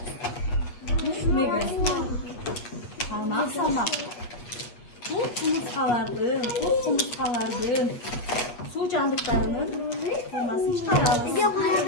Алмак-салмак. Бул кумурскалардын, кос кумурскалардын суу жандыктарынын формасын чыгарабыз.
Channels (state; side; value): late; right; 8.4 ms